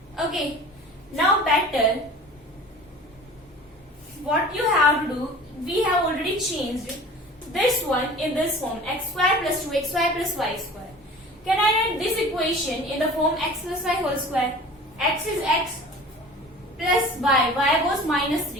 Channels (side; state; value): both; normal; correlation 0.42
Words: Okay. Now better, what you have to do, we have already changed this one in this form, x square plus 2xy plus y square. Can I write this equation in the form x plus y whole square? X is x plus y was minus